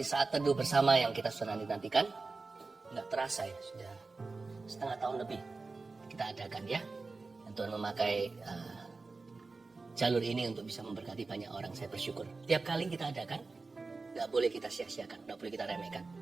teduh bersama yang kita sudah nantikan. Nggak terasa ya, sudah setengah tahun lebih kita adakan ya. Dan Tuhan memakai jalur ini untuk bisa memberkati banyak orang. Saya bersyukur. Tiap kali kita adakan, nggak boleh kita sia-siakan, nggak boleh kita remehkan.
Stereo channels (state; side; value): quieter; left; 3.9 dB